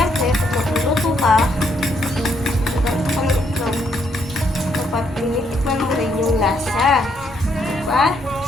pag magluluto ka, dapat tinitikman mo rin yung lasa. Diba?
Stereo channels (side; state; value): both; normal; correlation 0.73